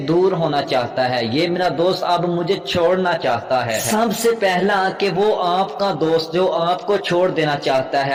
दूर होना चाहता है, ये मेरा दोस्त अब मुझे छोड़ना चाहता है। सबसे पहला कि वो आपका दोस्त जो आपको छोड़ देना चाहता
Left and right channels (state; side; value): identical; both; correlation 1.00